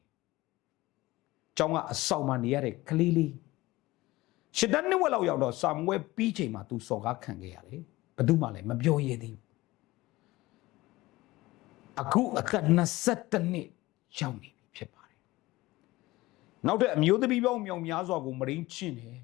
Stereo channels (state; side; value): quieter; right; 19.2 dB